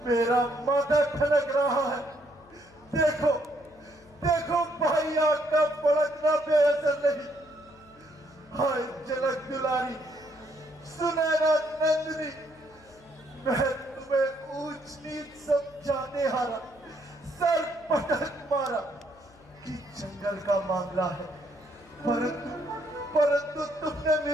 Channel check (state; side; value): noise; left; hum, 26 dB below the sound